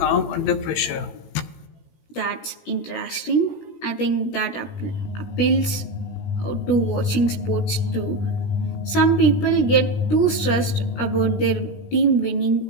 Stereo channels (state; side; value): late; right; 17 ms